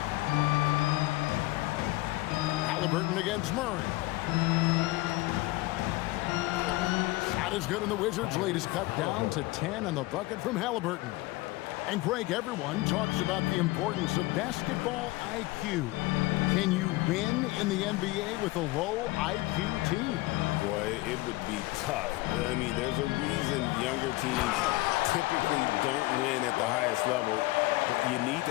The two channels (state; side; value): quieter; right; 20.1 dB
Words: Halliburton against Murray. Shot is good, and the Wizards' lead is cut down to 10 on the bucket from Halliburton. And Greg, everyone talks about the importance of basketball IQ. Can you win in the NBA with a low IQ team? Boy, it would be tough. I mean, there's a reason younger teams typically don't win at the highest level. But you need